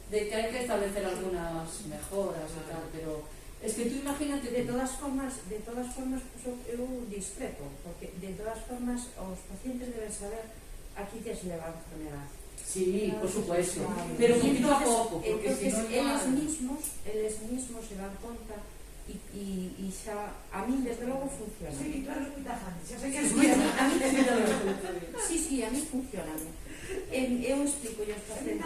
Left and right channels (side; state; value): both; identical; correlation 1.00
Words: de que hay que establecer algunas mejoras y tal, pero es que tú imagínate De todas formas, pues, eu discrepo, porque de todas formas os pacientes deben saber aquí que se leva a enfermedad. Sí, por supuesto, Claro. pero Y poquito a poco, porque entonces si no eles mismos se dan conta e xa, a min desde logo funciona. Sí, claro, es muy tajante. Ya sé que es Sí, muy a tajante. mí sí, a mí funciona. Eu explico aos A mí